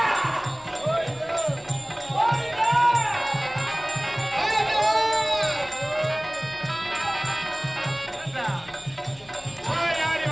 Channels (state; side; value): noise; left; hum, 29 dB below the sound